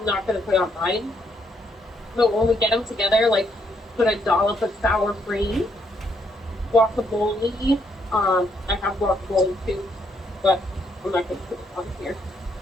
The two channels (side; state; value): both; normal; correlation 0.73